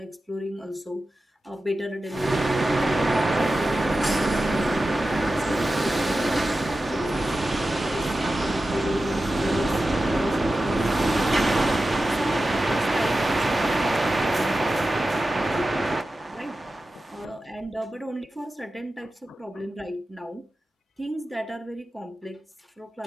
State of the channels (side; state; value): both; normal; correlation 0.93